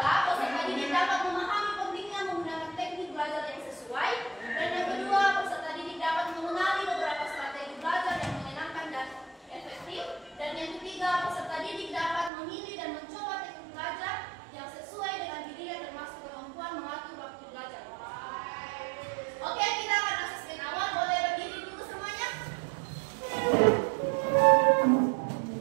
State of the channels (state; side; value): drops out; left; at 12.3 s